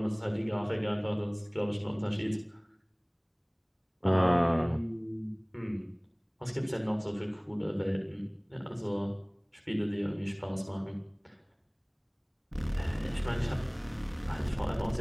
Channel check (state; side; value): identical; both; correlation 1.00